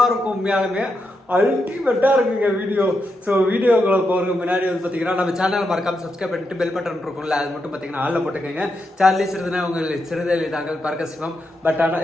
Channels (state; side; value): normal; both; correlation 0.84